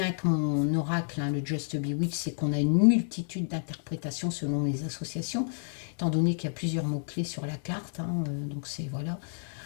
avec mon oracle, hein, le Just Bewitch, c'est qu'on a une multitude d'interprétations selon les associations, étant donné qu'il y a plusieurs mots-clés sur la carte, hein, donc c'est... Voilà.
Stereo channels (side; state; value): right; silent; 56 dB below the other